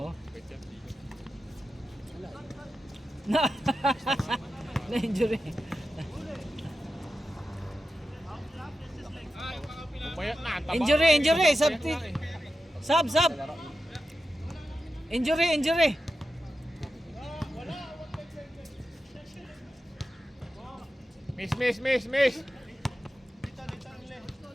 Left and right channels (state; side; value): normal; both; correlation 0.91